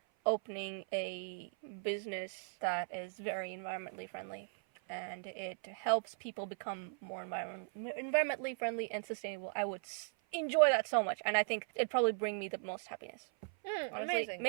opening a business that is very environmentally friendly, and it helps people become more environmentally friendly and sustainable. I would enjoy that so much, and I think it'd probably bring me the most happiness. Honestly, Amazing.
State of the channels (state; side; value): silent; left; 52 dB below the other